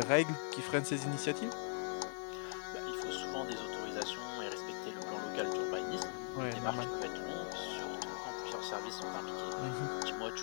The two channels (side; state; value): right; silent; digital silence